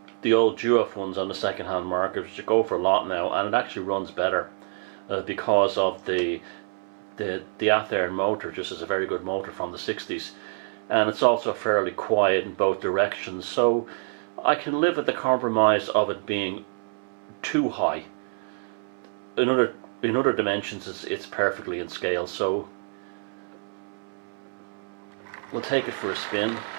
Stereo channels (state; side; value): silent; left; 61 dB below the other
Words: the old Duof ones on the second-hand market, which go for a lot now, and it actually runs better because of the Athearn motor. Just is a very good motor from the 60s, and it's also fairly quiet in both directions. So I can live with the compromise of it being too high. In other dimensions, it's perfectly in scale. So we'll take it for a spin